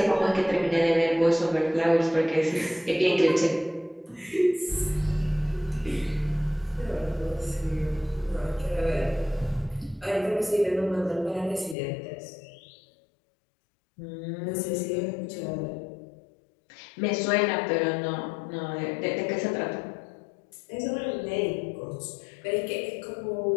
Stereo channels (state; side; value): drops out; right; at 11.8 s